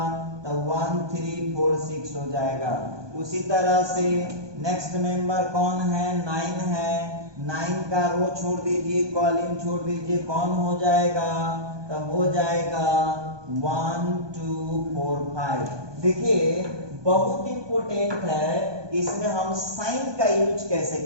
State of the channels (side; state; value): left; late; 1.2 ms